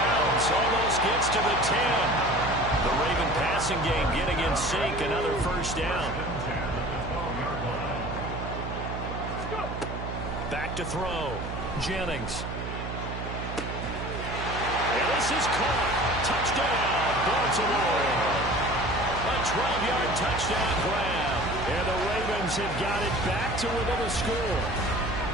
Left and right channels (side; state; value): right; noise; hum, 6 dB below the sound